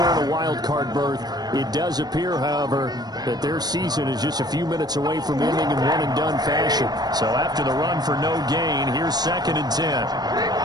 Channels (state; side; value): late; left; 0.19 ms